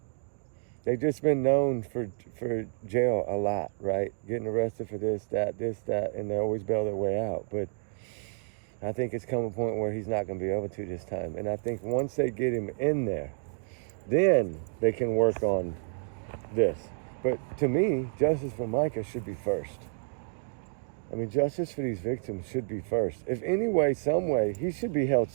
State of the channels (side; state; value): left; silent; 58 dB below the other